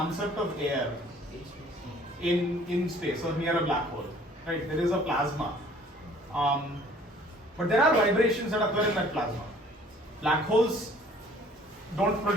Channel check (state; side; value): normal; both; correlation 0.55